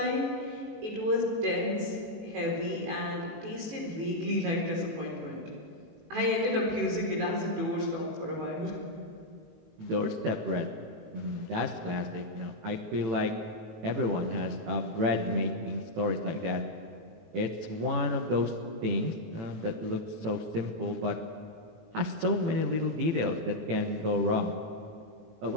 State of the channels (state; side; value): late; left; 18 ms